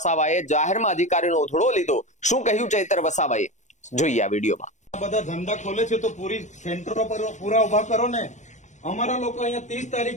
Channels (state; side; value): late; right; 0.35 ms